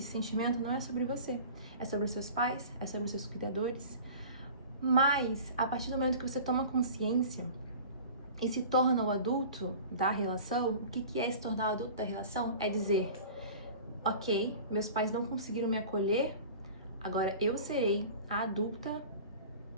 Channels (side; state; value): both; inverted; correlation -0.40